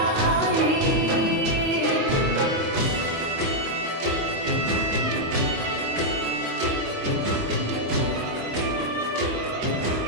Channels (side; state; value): left; late; 25 ms